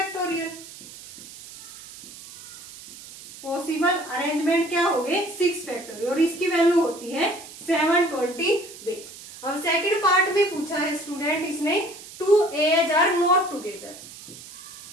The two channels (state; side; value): noise; right; hiss, 16 dB below the sound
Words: पॉसिबल अरेंजमेंट क्या हो गए 6 फैक्टोरियल और इसकी वैल्यू होती है 720 वेज। अब सेकंड पार्ट में पूछा है स्टूडेंट इसने 2 A's are not together,